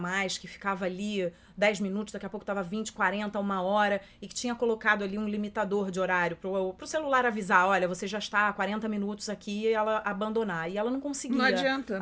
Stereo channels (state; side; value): identical; both; correlation 1.00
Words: que ficava ali 10 minutos, daqui a pouco estava 20, 40, 1 hora, e que tinha colocado ali um limitador de horário pro celular avisar, olha, você já está há 40 minutos aqui, e ela abandonar. E ela não conseguia Não adianta.